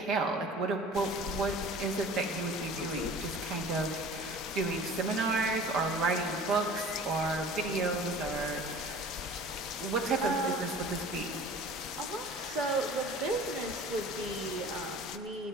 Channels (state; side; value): normal; both; correlation 0.44